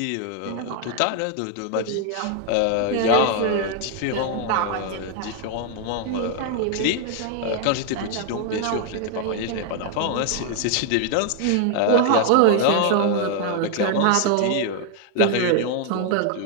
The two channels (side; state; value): both; different; correlation 0.00